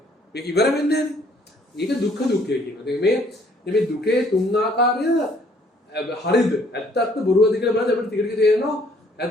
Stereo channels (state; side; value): normal; both; correlation 0.62